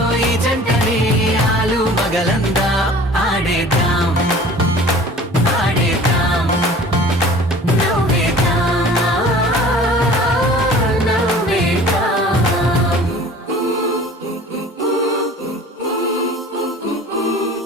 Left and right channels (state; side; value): normal; both; correlation 0.45